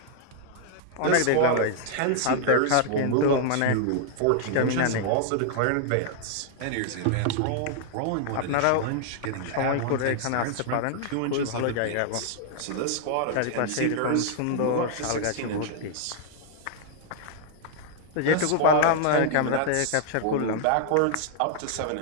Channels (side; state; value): both; different; correlation 0.00